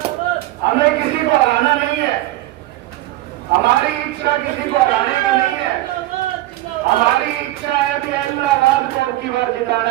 हमें किसी को हराना नहीं है, हमारी इच्छा किसी को हराने की नहीं है। हमारी इच्छा है कि इलाहाबाद को अब की बार जिताना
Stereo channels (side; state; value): left; quieter; 16.6 dB